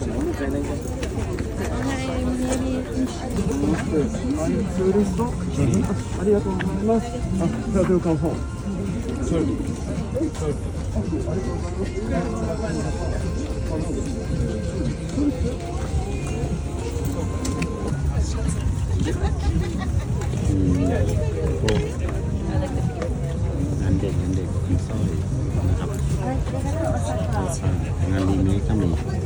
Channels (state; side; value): identical; both; correlation 1.00